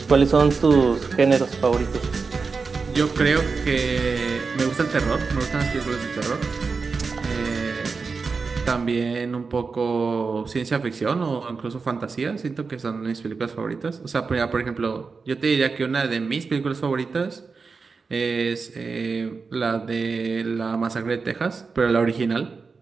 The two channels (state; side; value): quieter; left; 4.7 dB